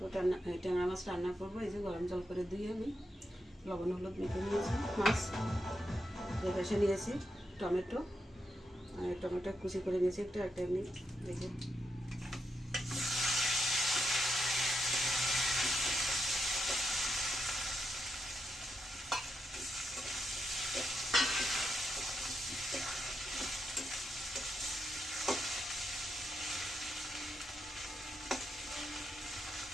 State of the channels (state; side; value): normal; both; correlation 0.84